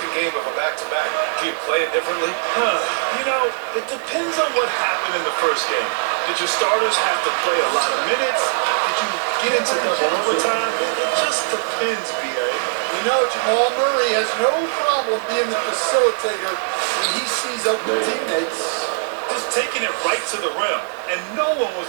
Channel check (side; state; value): left; silent; digital silence